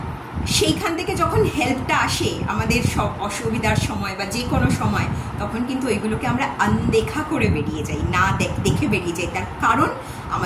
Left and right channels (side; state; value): both; identical; correlation 1.00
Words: সেইখান থেকে যখন হেল্পটা আসে আমাদের সব অসুবিধার সময় বা যে কোনো সময়, তখন কিন্তু ওইগুলোকে আমরা আনদেখা করে বেরিয়ে যাই, না দেখে বেরিয়ে যাই। তার কারণ